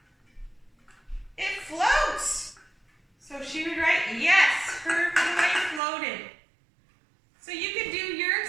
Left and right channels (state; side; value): drops out; left; at 5.8 s